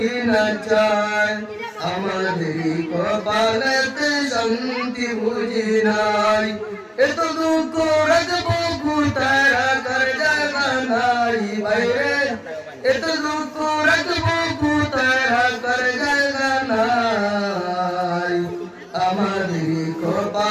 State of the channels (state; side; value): identical; both; correlation 1.00